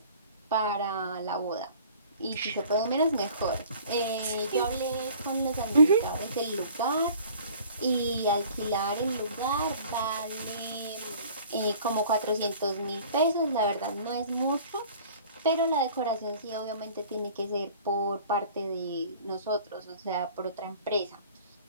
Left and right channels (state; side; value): inverted; both; correlation -0.49